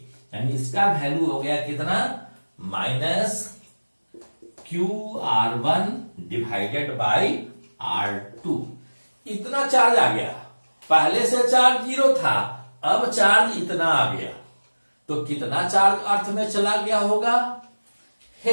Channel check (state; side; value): inverted; both; correlation -1.00